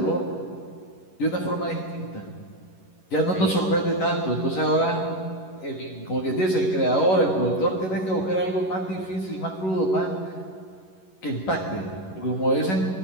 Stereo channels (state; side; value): late; right; 11 ms